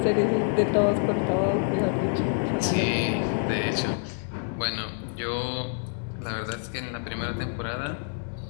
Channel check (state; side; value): silent; right; 60 dB below the other